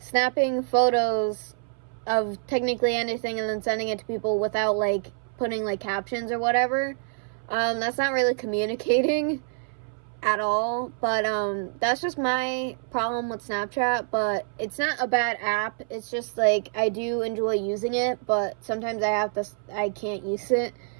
photos of technically anything and then sending it to people without like putting like captions or whatever, that's not really communicating at all. But that's just my problem with Snapchat. But it's not a bad app, it's just like I do enjoy using it, but sometimes I can't use it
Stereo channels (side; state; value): left; silent; 61 dB below the other